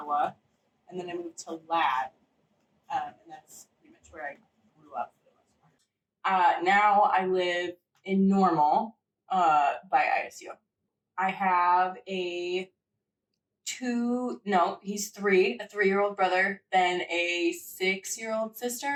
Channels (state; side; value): identical; both; correlation 1.00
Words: and then I moved to Lad, and that's pretty much where I grew up for the most part. Now I live in Normal, by ISU. I have a 3-year-old brother, then a 6-year-old